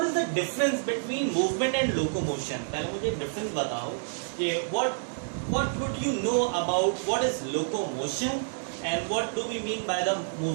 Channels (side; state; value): left; silent; digital silence